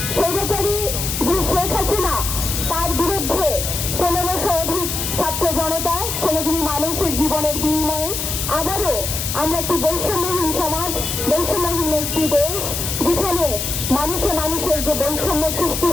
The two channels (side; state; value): left; noise; hiss, 3 dB below the sound